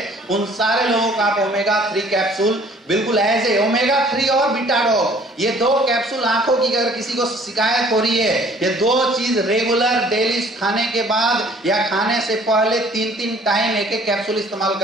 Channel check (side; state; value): both; normal; correlation 0.55